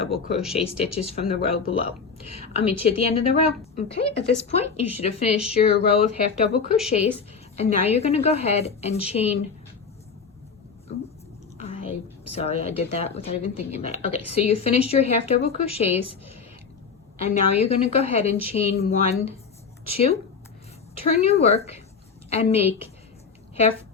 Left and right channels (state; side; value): quieter; right; 5.6 dB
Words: crochet stitches from the row below. I'll meet you at the end of the row. Okay, at this point you should have finished your row of half double crochets, and now you're going to go ahead and chain. Sorry, I did that without even thinking about it. Okay, so you finished your half double crochets, and now you're going to go ahead and chain 1, 2, turn your work, and make